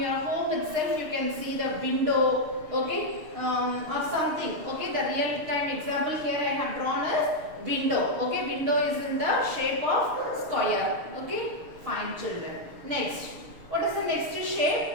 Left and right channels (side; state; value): left; late; 6.7 ms